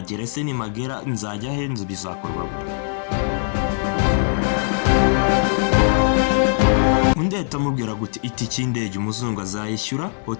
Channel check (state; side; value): silent; right; digital silence